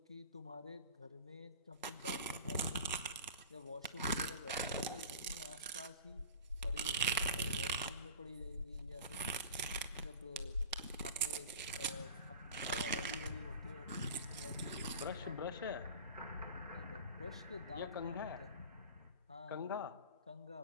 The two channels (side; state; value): both; inverted; correlation -0.37